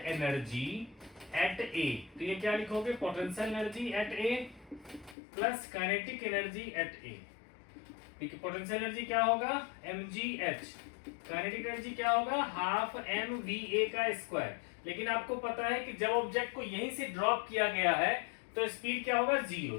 एनर्जी एट ए, तो ये क्या लिखोगे, potential energy at A plus kinetic energy at A. Potential energy क्या होगा, mgh, काइनेटिक एनर्जी क्या होगा, हाफ mva का स्क्वायर। लेकिन आपको पता है कि जब ऑब्जेक्ट को यहीं से ड्रॉप किया गया है तो स्पीड क्या होगा, 0,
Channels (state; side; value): drops out; right; at 5.2 s